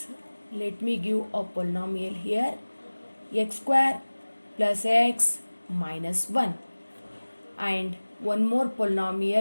Let me give a polynomial here, x square plus x minus 1, and one more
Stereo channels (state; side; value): inverted; both; correlation -1.00